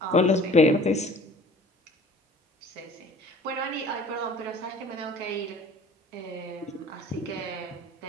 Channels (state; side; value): normal; both; correlation 0.48